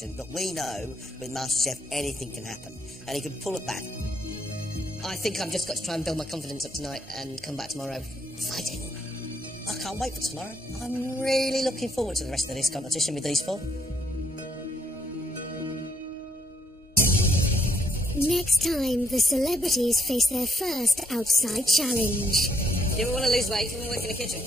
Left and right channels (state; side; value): normal; both; correlation 0.72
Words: but we know with MasterChef anything can happen, and he can pull it back. I think I've just got to try and build my confidence up tonight and come back tomorrow fighting. I can't wait for tomorrow. I'm really looking forward to the rest of this competition with these 4. Next time, the celebrities face their first outside challenge. You ever want to lose weight? You want to work in the kitchen?